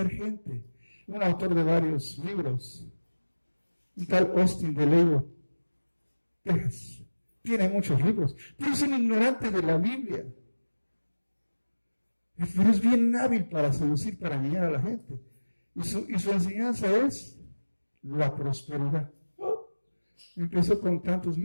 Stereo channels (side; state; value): both; inverted; correlation -1.00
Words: gente? Un autor de varios libros. Un tal Austin de Lego, Texas, tiene muchos libros, pero es un ignorante de la Biblia. Pero es bien hábil para seducir, para engañar a la gente. Y su enseñanza es la prosperidad. Empezó con tantos